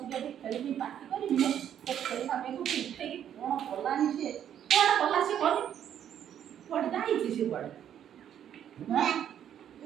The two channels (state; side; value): quieter; left; 9.8 dB